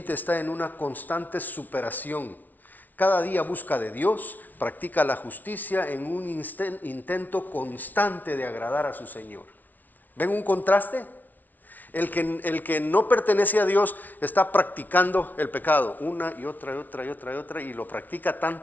está en una constante superación. Cada día busca de Dios, practica la justicia en un intento constante de agradar a su Señor. ¿Ven un contraste? El que no pertenece a Dios está practicando el pecado una y otra y lo practica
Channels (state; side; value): late; right; 0.081 ms